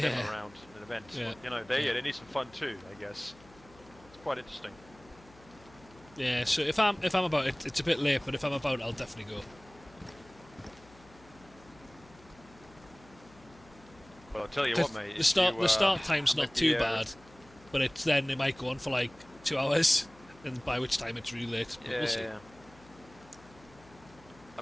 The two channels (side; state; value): left; noise; hum, 24 dB below the sound